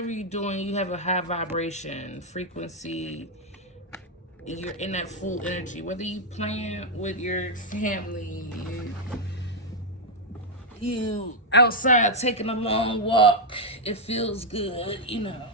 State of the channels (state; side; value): normal; both; correlation -0.01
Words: you're doing, you have a high vibration, frequency. You're in that full energy. Whether you plan with your family, you outside taking a long walk, it feels good,